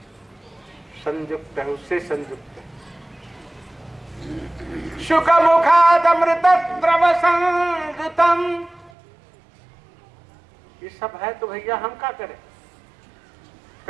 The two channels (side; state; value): left; drops out; at 8.9 s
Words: संयुक्त है, उससे संयुक्त है। शुक मुखाद अमृत द्रव संयुतम, ये सब है तो भैया हम क्या करें?